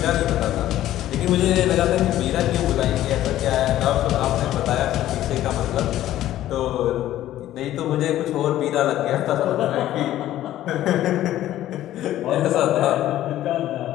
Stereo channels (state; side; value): quieter; right; 13.5 dB